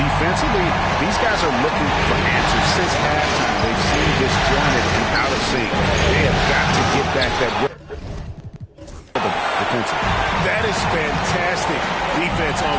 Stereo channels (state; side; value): identical; both; correlation 1.00